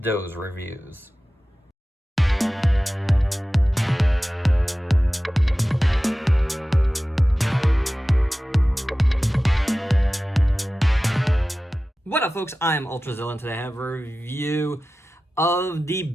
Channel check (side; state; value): both; normal; correlation 0.95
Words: those reviews. What up, folks? I'm Ultrazilla, and today I have a review of the